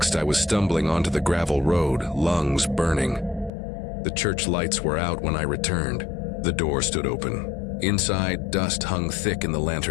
I was stumbling onto the gravel road, lungs burning. The church lights were out when I returned. The door stood open. Inside, dust hung thick in the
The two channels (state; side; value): drops out; right; at 3.5 s